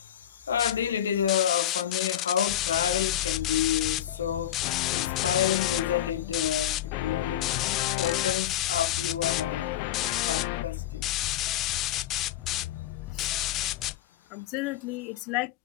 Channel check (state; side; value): quieter; right; 11.4 dB